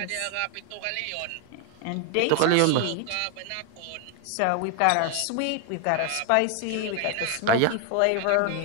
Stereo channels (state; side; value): different; both; correlation 0.00